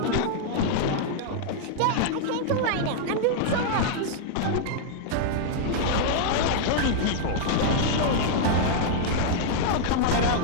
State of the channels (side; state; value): both; different; correlation -0.01